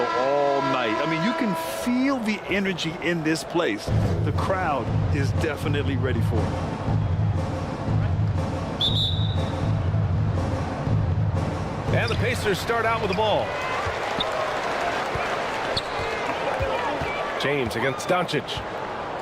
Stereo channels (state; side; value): identical; both; correlation 1.00